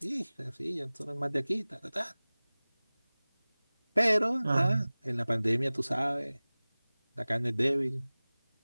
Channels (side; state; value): both; inverted; correlation -0.99